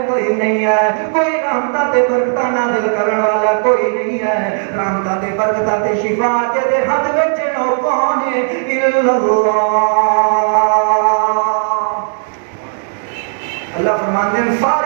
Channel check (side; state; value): left; silent; digital silence